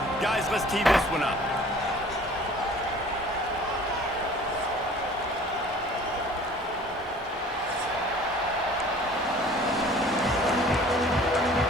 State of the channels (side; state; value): both; normal; correlation 0.49